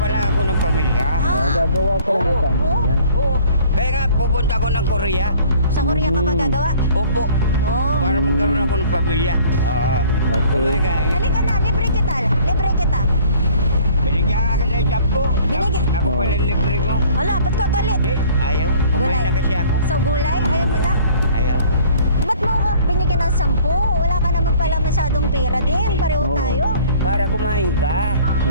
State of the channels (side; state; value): both; inverted; correlation -0.53